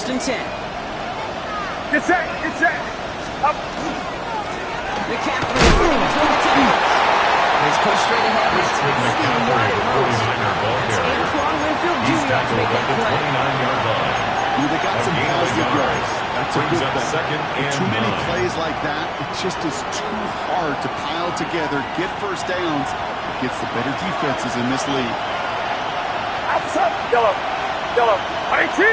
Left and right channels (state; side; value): identical; both; correlation 1.00